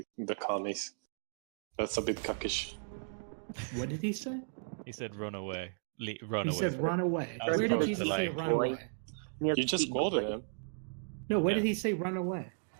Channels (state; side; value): silent; left; digital silence